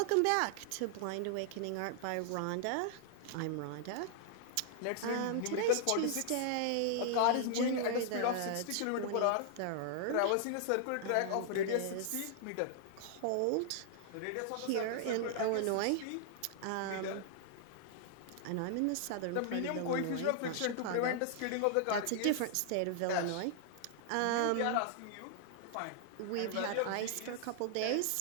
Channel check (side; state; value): both; different; correlation -0.01